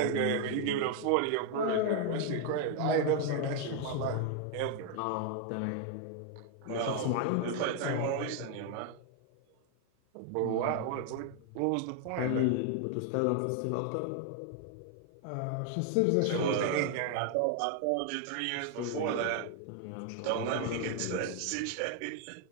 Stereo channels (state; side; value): different; both; correlation 0.00